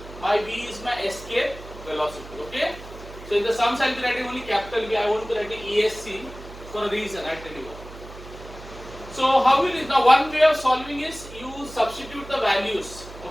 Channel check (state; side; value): noise; right; hum, 16 dB below the sound